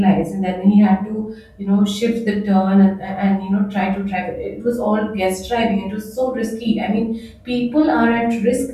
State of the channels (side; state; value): both; identical; correlation 1.00